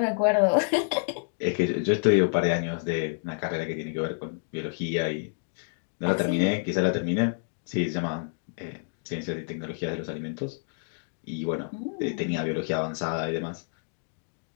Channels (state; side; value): silent; right; digital silence